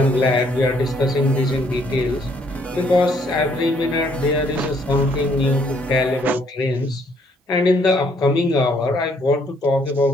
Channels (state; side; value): normal; both; correlation 0.67